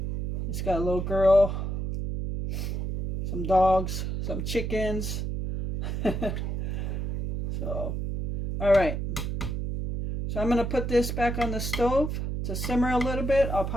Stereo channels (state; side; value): noise; right; hum, 3 dB below the sound